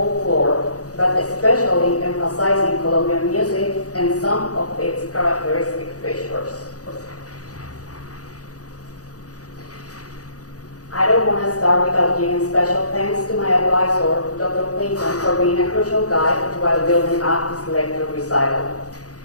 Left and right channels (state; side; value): late; right; 0.67 ms